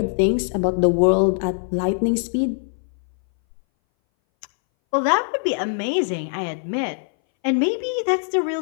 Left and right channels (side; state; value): right; silent; 61 dB below the other